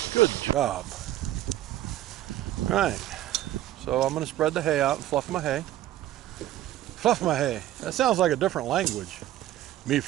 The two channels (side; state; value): left; quieter; 13.7 dB